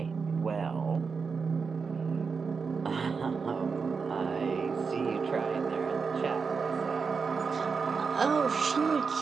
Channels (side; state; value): left; quieter; 5.3 dB